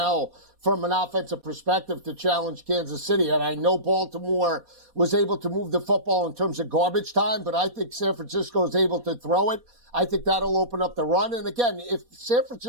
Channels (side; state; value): left; late; 4.2 ms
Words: from an offensive perspective to challenge Kansas City. And I know Baltimore was able to move the football in terms of garbage time, but I think San Francisco is able to throw it. I think that'll open up the run. And again, if San